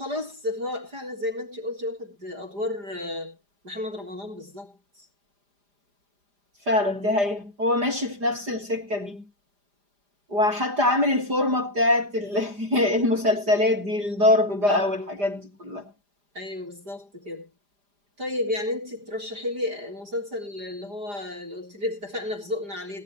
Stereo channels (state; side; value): late; left; 4.9 ms